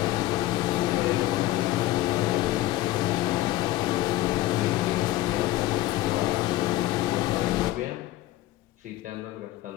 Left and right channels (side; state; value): right; quieter; 16.0 dB